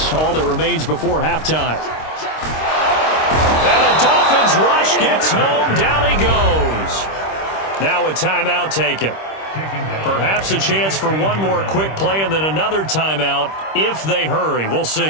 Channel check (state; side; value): late; right; 26 ms